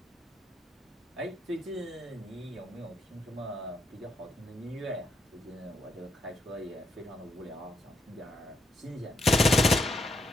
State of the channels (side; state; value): both; normal; correlation 0.78